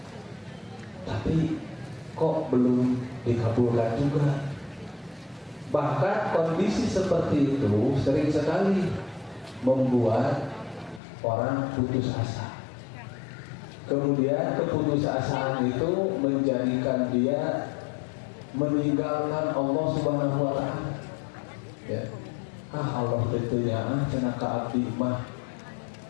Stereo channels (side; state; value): right; drops out; at 11.0 s